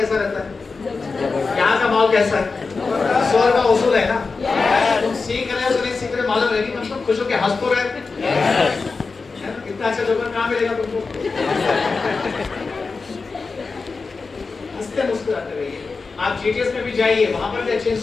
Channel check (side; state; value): right; quieter; 4.3 dB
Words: रहता है? यहाँ का माहौल कैसा है? स्वर का उसूल है ना, तुम सीख रहे हो तो नहीं सीख रहे मालूम है, कम से कम खुश होकर हंस तो रहे। कितना अच्छा जोकर कहाँ मिलेगा तुमको? हंसते मुस्कुराते रहिए। आप जीटीएस में भी जाइए, वहां पर भी अच्छे